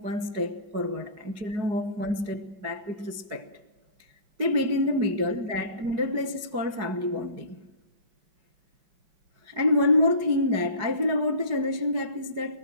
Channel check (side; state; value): left; late; 4.8 ms